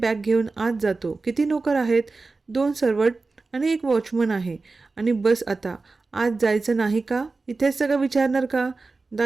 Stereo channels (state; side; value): quieter; left; 3.8 dB